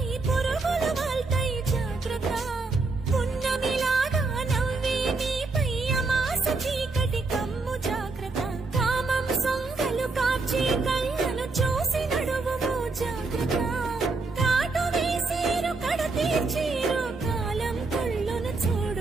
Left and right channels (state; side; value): quieter; left; 3.8 dB